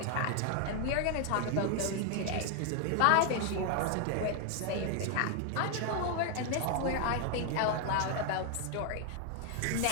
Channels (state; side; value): different; both; correlation 0.00